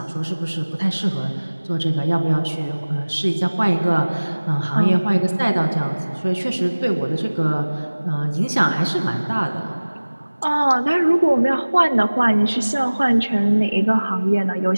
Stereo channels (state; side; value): inverted; both; correlation -1.00